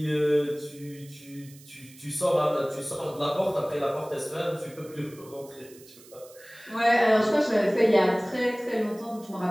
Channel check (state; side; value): noise; right; hiss, 23 dB below the sound